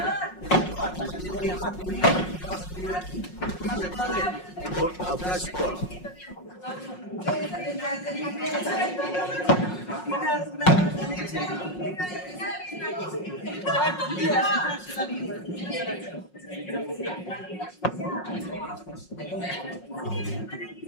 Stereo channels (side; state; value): right; late; 5.5 ms